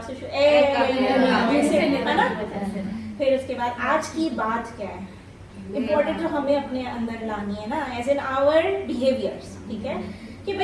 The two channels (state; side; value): identical; both; correlation 1.00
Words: سے شروع؟ پھر اس کے بعد آج کی بات کیا ہے امپورٹنٹ جو ہمیں اپنے اندر لانی ہے نا، ایز ان آور بیہیویئرس. ٹھیک ہے، کہ